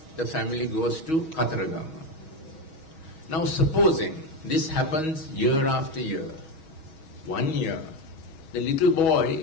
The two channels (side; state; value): right; late; 6.2 ms